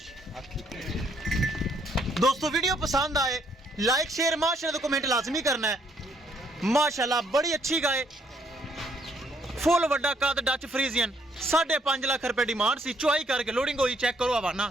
दोस्तों, वीडियो पसंद आए लाइक शेयर माशाल्लाह तो कमेंट लाजमी करना है। माशाल्लाह बड़ी अच्छी गाय, फुल वड्डा कद, डच फ्रीजियन, 5.5 लाख रुपए डिमांड सी। चुआई करके लोडिंग हुई, चेक करो हवाना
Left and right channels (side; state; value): both; normal; correlation 0.69